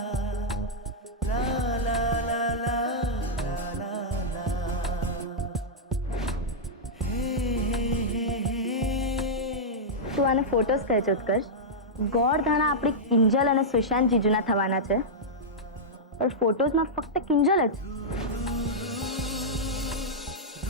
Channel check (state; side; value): normal; both; correlation -0.09